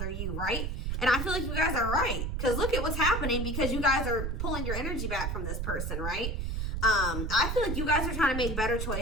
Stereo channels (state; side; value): noise; right; rumble, 2 dB below the sound